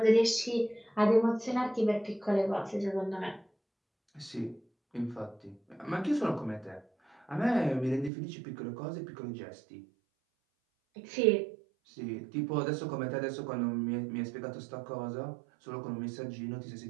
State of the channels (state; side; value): drops out; left; at 8.1 s